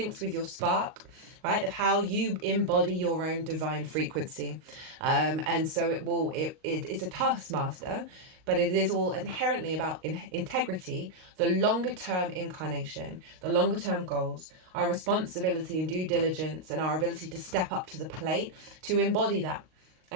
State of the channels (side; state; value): left; late; 38 ms